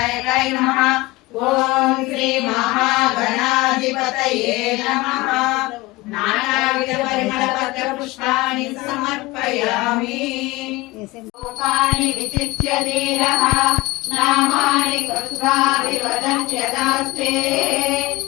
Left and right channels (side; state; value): right; quieter; 20.5 dB